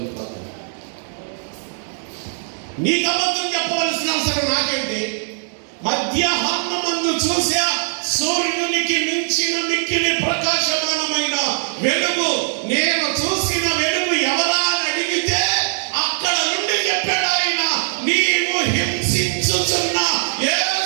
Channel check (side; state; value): left; silent; digital silence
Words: పగలు. నీకు అబద్ధం చెప్పవలసిన అవసరం నాకేంటి? మధ్యాహ్నమందు చూసా సూర్యునికి మించిన మిక్కిలి ప్రకాశమానమైన వెలుగు. నేను చూసిన వెలుగు ఎవరా అని అడిగితే అక్కడ నుండి చెప్పాడు ఆయన, నీవు హింసించుచున్న